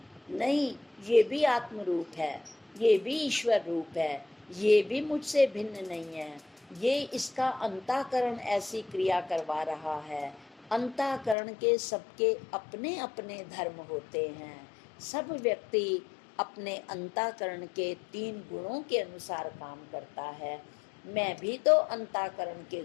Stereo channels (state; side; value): drops out; right; at 11.4 s